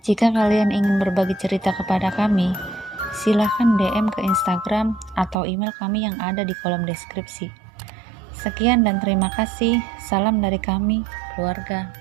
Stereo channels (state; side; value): drops out; left; at 5.4 s